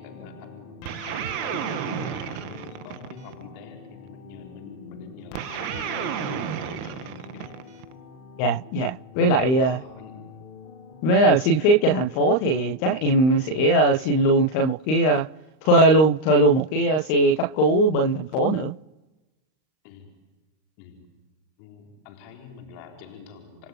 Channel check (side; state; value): right; late; 39 ms